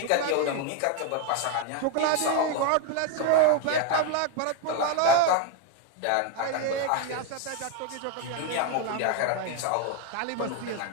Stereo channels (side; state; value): both; different; correlation 0.01